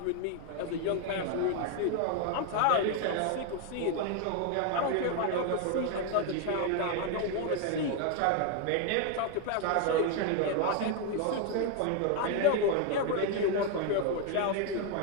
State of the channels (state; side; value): different; both; correlation 0.01